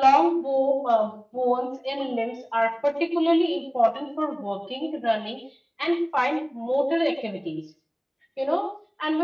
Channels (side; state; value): both; identical; correlation 1.00